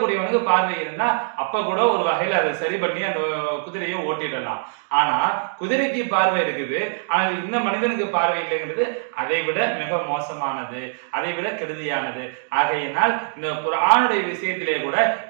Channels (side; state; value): left; silent; digital silence